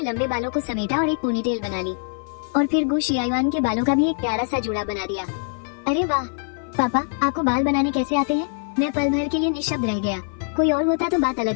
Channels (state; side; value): silent; right; 55 dB below the other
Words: लंबे बालों को समेटा और एक पोनीटेल बना ली और फिर गु शियायुआन के बालों का भी एक प्यारा सा जुड़ा बना दिया। अरे वाह पापा, आपको बाल बनाने कैसे आते हैं? मैं पल भर के लिए निशब्द रह गया। कोई और होता तो बात